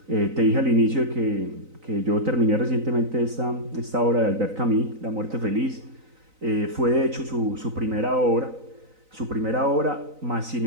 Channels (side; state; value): left; late; 3.9 ms